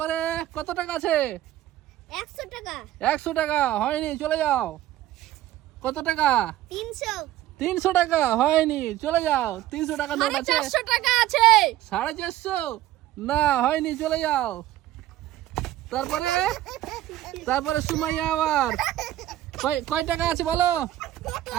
কত টাকা আছে? 100 টাকা। 100 টাকা হয়নি, চলে যাও। কত টাকা? 300। 300 টাকা হয়নি, চলে যাও। 300 টাকা নোট আছে। 450 টাকা আছে। 450 না হয়নি, চলে যাও। তারপরে তারপরে সুমাইয়া আবার কয় টাকা আছে বলো,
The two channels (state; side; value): quieter; left; 14.2 dB